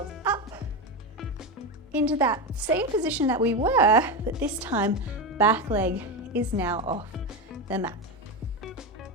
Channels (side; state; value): both; normal; correlation 0.16